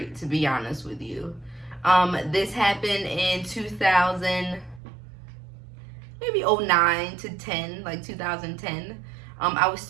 to be honest with you. This happened in 2000, maybe 09 to 10, like 2010. I was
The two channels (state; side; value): drops out; left; at 4.8 s